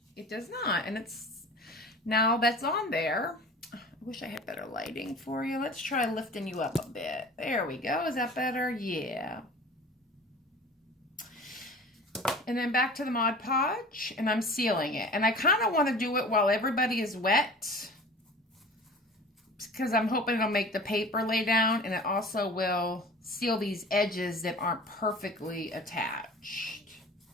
it does not. And now that's on there. I wish I had better lighting for you. Let's try lifting you up a bit. There we go. Is that better? Yeah. And then back to the Mod Podge, and I'm sealing it. And I kind of want to do it while everybody is wet, because I'm hoping it'll make the paper lay down, and it also will seal these edges that aren't perfectly attached.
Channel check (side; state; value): both; normal; correlation 0.41